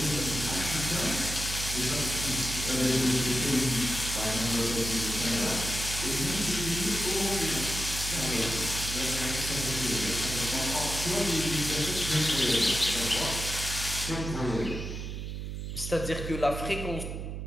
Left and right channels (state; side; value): noise; right; hum, 6 dB below the sound